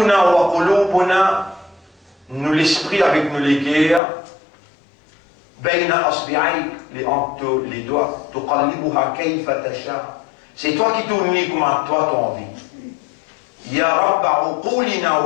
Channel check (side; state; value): right; drops out; at 4.0 s